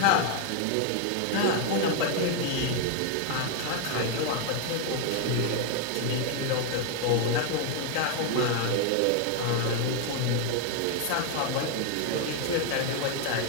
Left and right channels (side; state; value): both; different; correlation 0.01